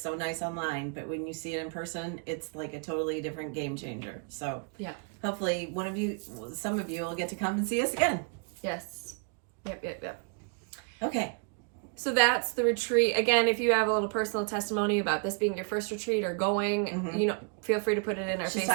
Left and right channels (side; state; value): left; quieter; 38.5 dB